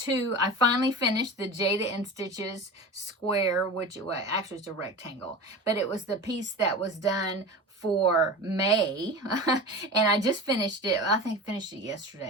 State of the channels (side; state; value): both; normal; correlation 0.31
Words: I finally finished the Jada and Stitches square, which actually it's a rectangle, but it was the piece that was done for May. And I just finished it. I think I finished it